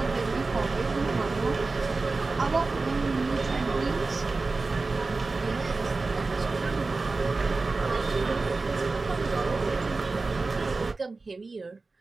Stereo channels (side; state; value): left; quieter; 3.7 dB